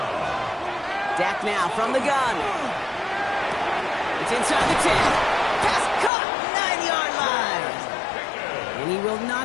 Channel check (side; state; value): right; drops out; at 6.1 s